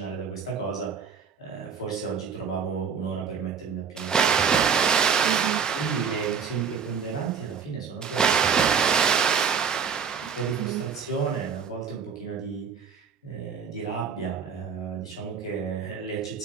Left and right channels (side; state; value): left; quieter; 6.6 dB